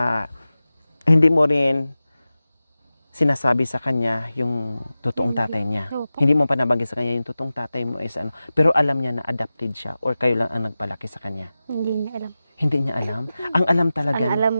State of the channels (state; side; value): inverted; both; correlation -0.95